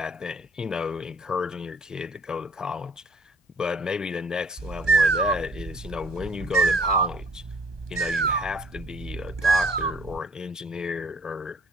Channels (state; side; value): normal; both; correlation 0.57